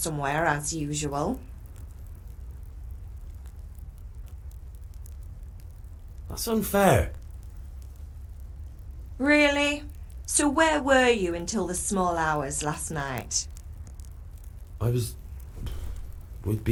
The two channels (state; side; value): identical; both; correlation 1.00